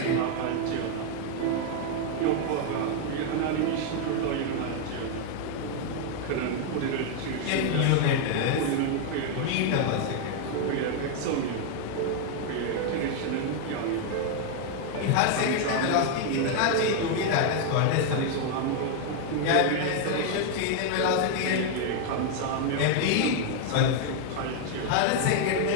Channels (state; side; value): different; both; correlation 0.00